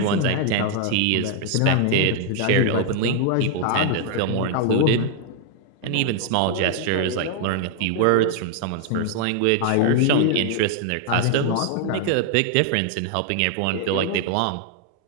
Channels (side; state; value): both; different; correlation 0.00